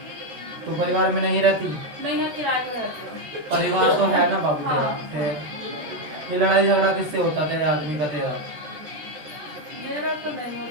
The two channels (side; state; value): left; late; 13 ms